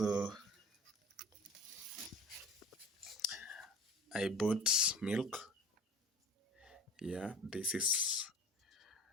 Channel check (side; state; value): both; normal; correlation 0.42